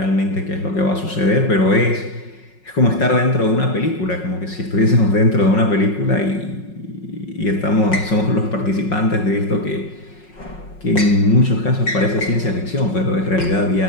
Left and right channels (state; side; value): late; right; 5.5 ms